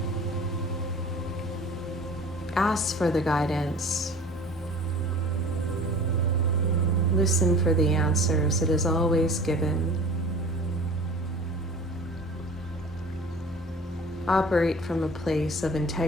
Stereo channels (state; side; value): normal; both; correlation 0.43